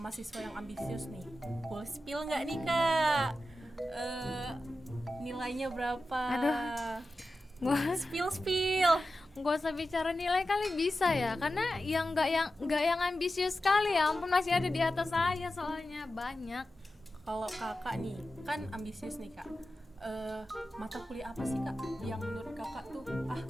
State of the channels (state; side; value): normal; both; correlation 0.92